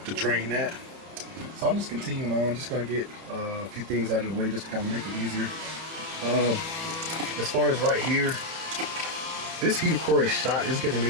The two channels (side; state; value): left; late; 30 ms